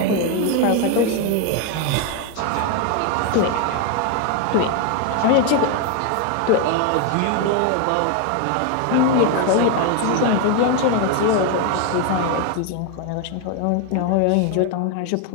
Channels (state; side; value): different; both; correlation 0.01